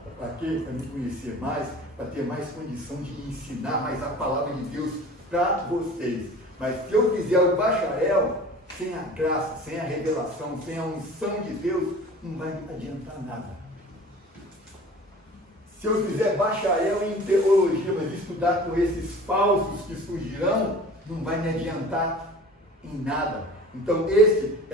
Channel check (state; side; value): normal; both; correlation 0.42